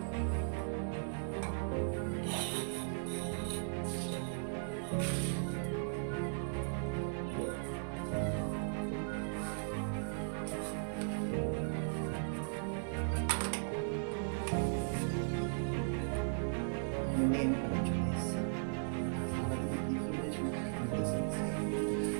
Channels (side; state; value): left; silent; digital silence